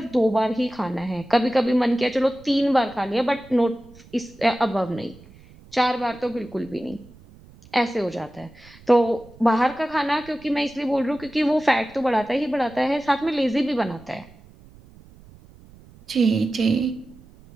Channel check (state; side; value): noise; right; rumble, 24 dB below the sound